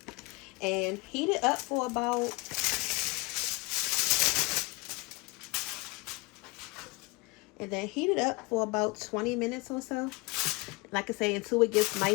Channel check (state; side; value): quieter; right; 26.0 dB